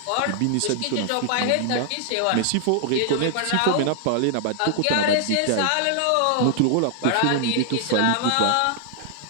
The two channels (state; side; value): different; both; correlation 0.00